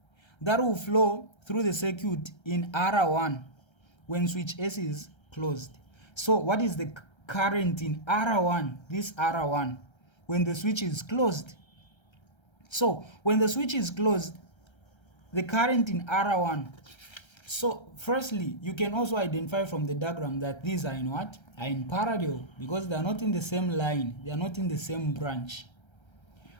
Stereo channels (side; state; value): right; late; 1.3 ms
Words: that will flow through the circuit in R1 when switch S is closed. So what is the current in R1, this R1, when the switch is closed? So when the switch is closed, the current in R1. So firstly, you can also identify from the diagram that these are in what? Are in parallel, because they are not in the same line, they are not in the same branch.